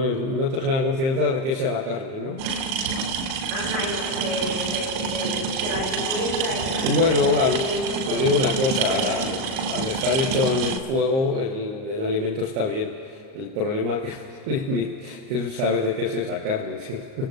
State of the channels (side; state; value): left; late; 38 ms